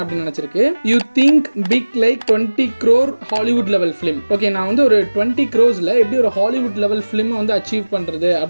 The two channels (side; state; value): both; inverted; correlation -1.00